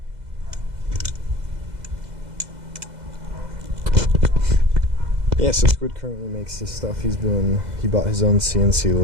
Yeah, so Squid currently makes his stuff. He bought his own CNC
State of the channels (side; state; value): left; late; 2.0 ms